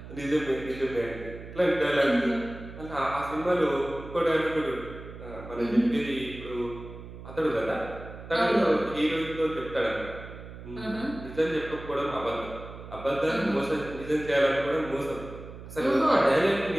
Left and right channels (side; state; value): right; noise; hum, 13 dB below the sound